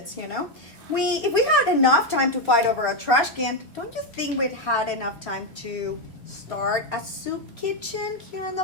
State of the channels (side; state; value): left; late; 3.0 ms